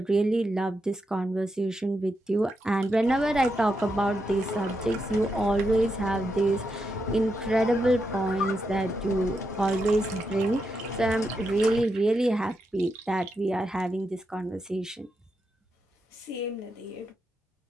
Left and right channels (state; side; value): normal; both; correlation 0.84